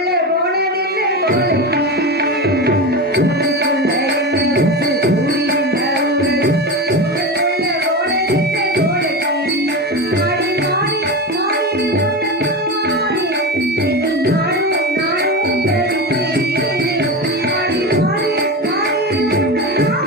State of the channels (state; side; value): normal; both; correlation 0.22